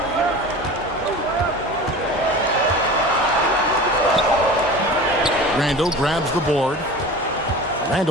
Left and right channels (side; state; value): both; normal; correlation 0.36